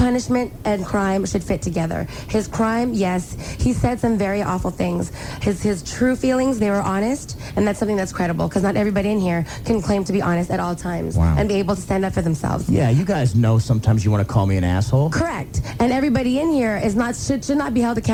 and crime should fit together. His crime, yes, he said some very awful things. His true feelings, they were honest, and that's something that's credible, because not everybody in here can claim to be honest at all times and be able to stand up for themselves. Yeah, you guys know sometimes you want to call me an asshole. Correct. And everybody in here should not be held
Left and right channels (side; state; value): both; identical; correlation 1.00